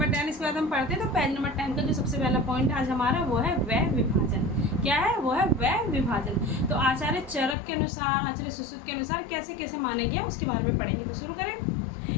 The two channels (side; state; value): right; drops out; at 7.6 s